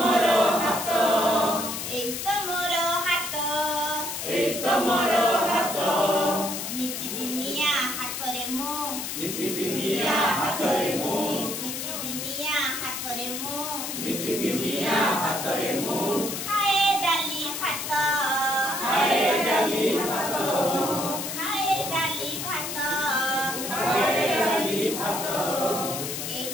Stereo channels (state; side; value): noise; left; hiss, 5 dB below the sound